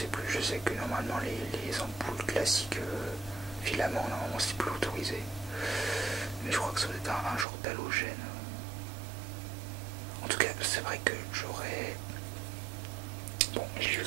plus, je sais que normalement les ampoules classiques filament normalement c'est plus autorisé. Mais je crois que ça doit être un genre d'halogène. En tout cas c'est vrai que j'aurais... Bon, j'ai vu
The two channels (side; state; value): left; drops out; at 7.5 s